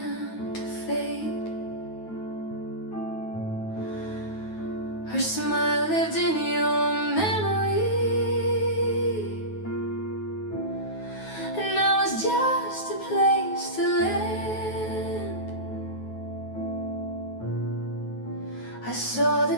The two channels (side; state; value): right; late; 9.3 ms